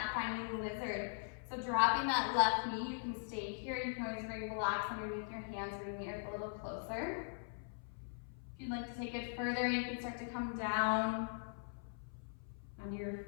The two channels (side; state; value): right; silent; 51 dB below the other